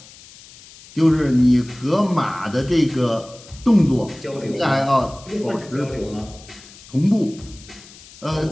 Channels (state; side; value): noise; left; hiss, 21 dB below the sound